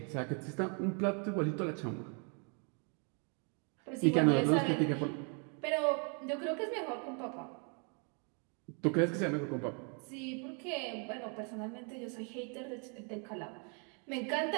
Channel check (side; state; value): left; quieter; 37.8 dB